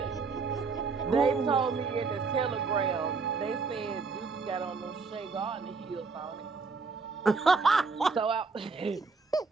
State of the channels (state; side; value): quieter; left; 4.6 dB